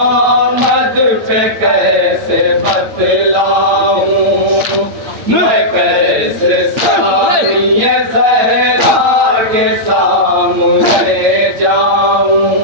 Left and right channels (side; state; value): left; late; 8.9 ms